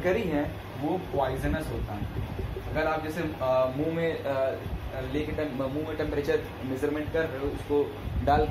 है वो पॉइजनस होता है। अगर आप जैसे मुंह में लेके मुंह में टेम्परेचर मेजरमेंट कर रहे हो उसको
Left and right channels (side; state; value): both; identical; correlation 1.00